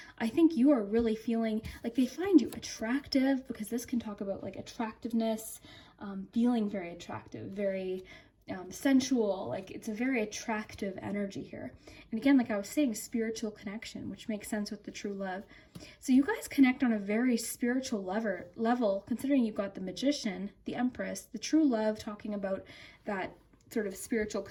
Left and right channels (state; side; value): identical; both; correlation 1.00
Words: I think you are really feeling like they find you attractive, because this can talk about like attractiveness, feeling very attractive, very sensual. Like it's a very attractive energy here. And again, like I was saying, spiritual connection, which makes sense with the true love. So you guys connect on a very spiritual level, considering you've got the Magician, the Empress, the true love, talking about that sort of spiritual